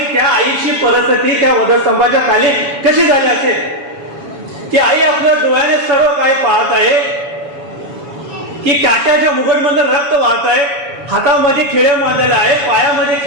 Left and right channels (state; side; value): late; left; 7.1 ms